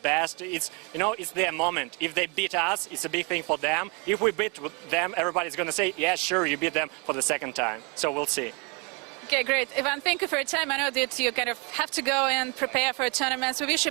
It's, you know, it's their moment. If they beat us, it's a big thing for them. If we beat them, everybody's going to say, yeah, sure, you beat them for the second time. So we'll see. Okay, great. Ivan, thank you for your time. I know that you kind of have to go and prepare for a tournament. So we wish you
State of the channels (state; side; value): quieter; left; 30.8 dB